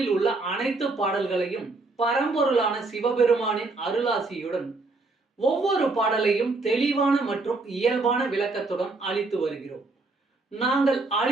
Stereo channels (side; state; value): left; quieter; 3.4 dB